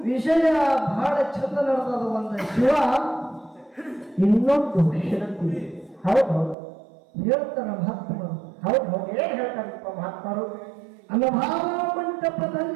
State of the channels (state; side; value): drops out; left; at 6.6 s